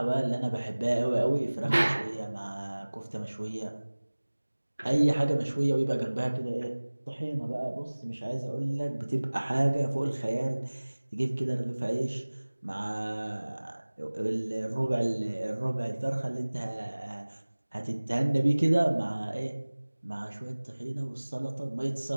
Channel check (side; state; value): both; inverted; correlation -1.00